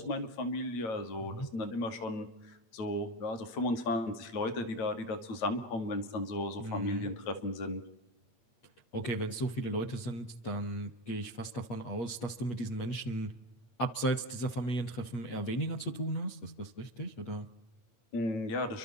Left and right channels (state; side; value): late; right; 8.3 ms